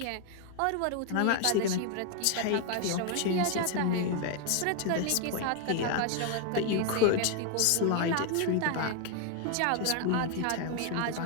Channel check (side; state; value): both; different; correlation 0.01